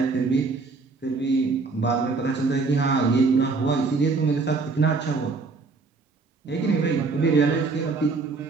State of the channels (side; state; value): left; quieter; 4.1 dB